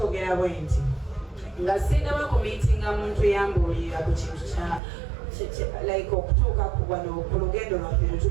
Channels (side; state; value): left; drops out; at 4.8 s